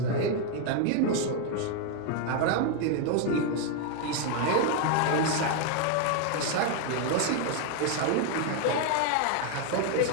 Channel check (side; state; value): both; different; correlation 0.01